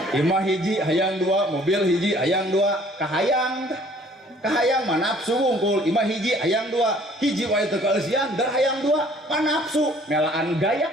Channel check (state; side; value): normal; both; correlation 0.56